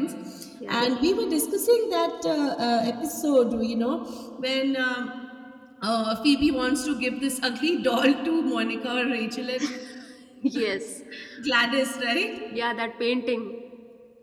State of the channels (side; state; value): both; identical; correlation 1.00